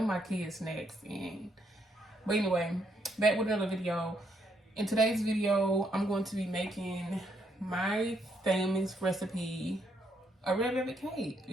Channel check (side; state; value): both; normal; correlation 0.74